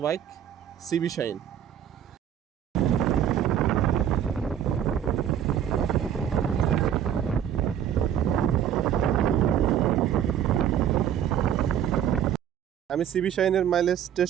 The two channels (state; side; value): quieter; left; 9.7 dB